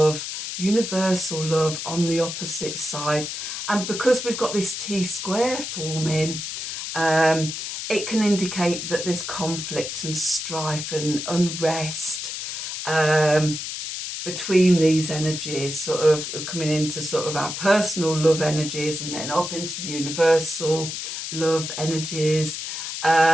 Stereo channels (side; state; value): left; noise; hiss, 6 dB below the sound